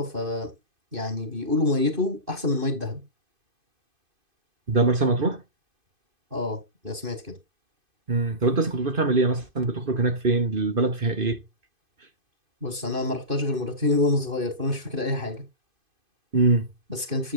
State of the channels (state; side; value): late; left; 2.5 ms